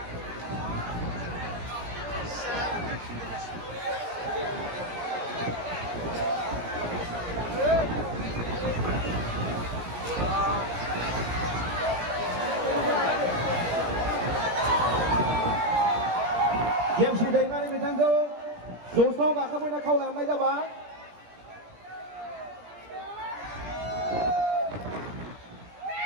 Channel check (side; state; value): left; late; 17 ms